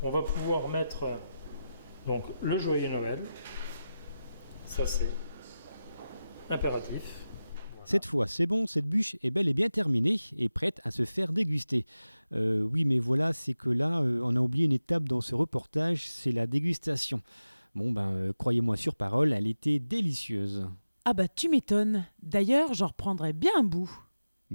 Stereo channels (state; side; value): inverted; both; correlation -0.94